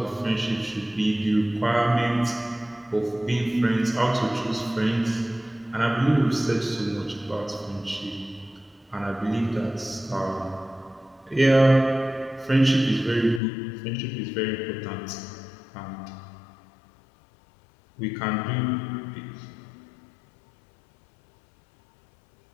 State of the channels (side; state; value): right; drops out; at 13.4 s